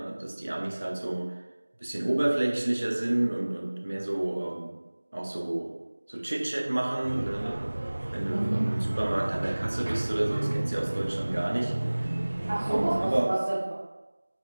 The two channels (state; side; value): inverted; both; correlation -1.00